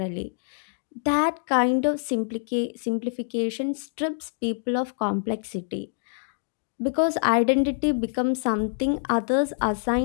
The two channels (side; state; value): right; silent; digital silence